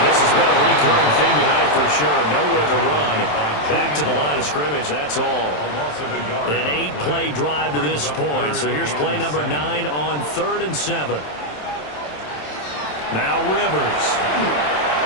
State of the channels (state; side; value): late; right; 27 ms